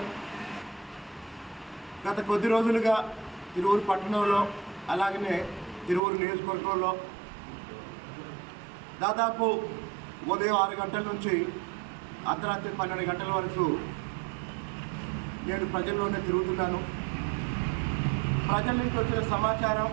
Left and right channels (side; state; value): left; drops out; at 6.0 s